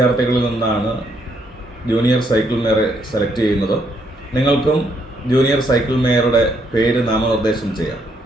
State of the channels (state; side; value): normal; both; correlation 0.73